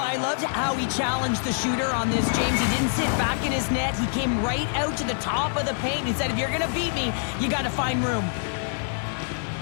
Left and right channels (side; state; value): right; silent; 61 dB below the other